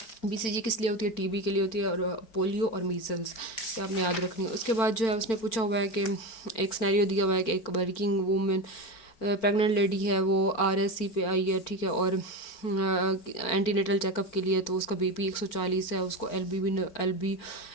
BCG किस लिए होती है, TB के लिए होती है, और पोलियो और मीज़ल्स, ये आपने याद रखनी है। उसके बाद जो है उसने पूछा हुआ है कि एक सिनेरियो दिया हुआ है कि एक वर्किंग वूमेन प्रेग्नेंट लेडी है, वो RSC पे आई है, ठीक है, और एंटीनेटल चेकअप के लिए, तो उसका BP 140 है, उसको एल्बी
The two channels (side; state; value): right; late; 4.5 ms